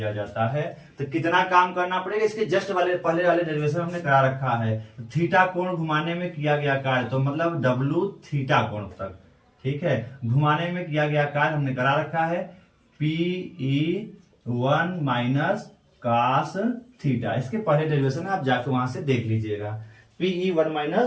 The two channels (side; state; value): both; identical; correlation 1.00